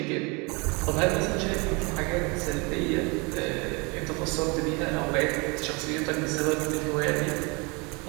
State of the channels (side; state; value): left; quieter; 29.0 dB